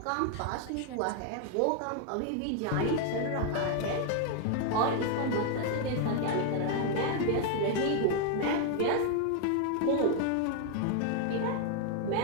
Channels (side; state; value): both; different; correlation 0.00